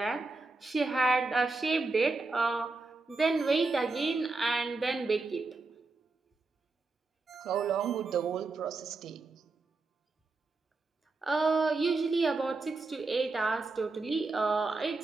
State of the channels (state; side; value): quieter; left; 3.6 dB